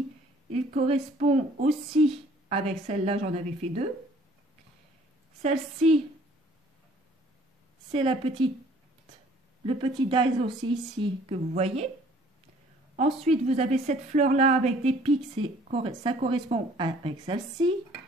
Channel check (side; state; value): both; normal; correlation 0.56